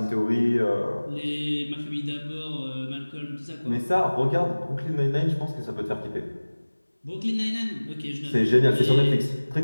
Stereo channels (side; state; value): both; inverted; correlation -1.00